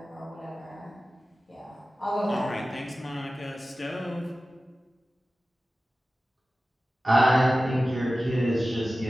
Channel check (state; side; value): normal; both; correlation 0.95